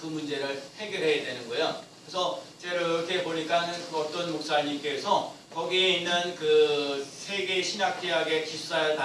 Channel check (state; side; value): identical; both; correlation 1.00